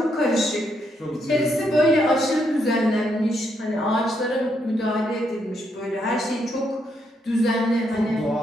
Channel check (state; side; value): normal; both; correlation 0.77